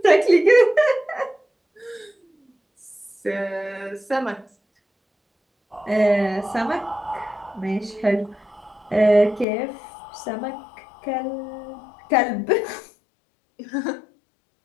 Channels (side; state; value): right; drops out; at 9.5 s